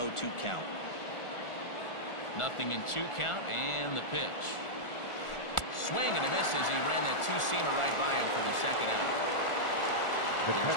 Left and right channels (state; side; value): late; right; 1.4 ms